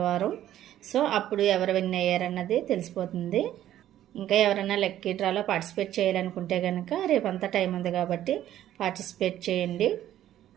సో అప్పుడు ఎవరు విన్ అయ్యారన్నది తెలిసిపోతుంది. ఇంకా ఎవరైనా లక్కీ డ్రాలో పార్టిసిపేట్ చేయాలనుకుంటే కనుక రేపంతా టైం ఉంది కాబట్టి పార్టిసిపేట్ చేయండి.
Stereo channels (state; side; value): quieter; left; 12.3 dB